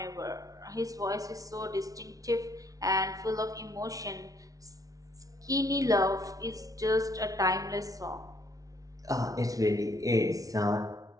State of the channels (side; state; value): left; late; 0.18 ms